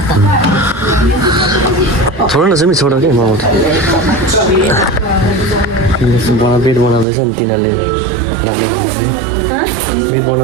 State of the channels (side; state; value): left; drops out; at 7.1 s